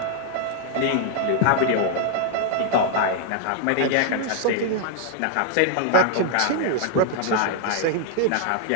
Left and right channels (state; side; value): different; both; correlation 0.00